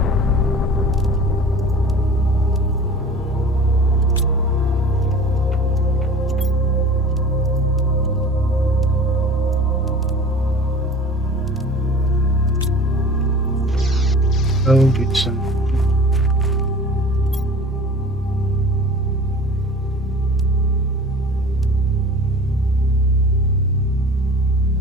Go get some.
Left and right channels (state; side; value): normal; both; correlation 0.42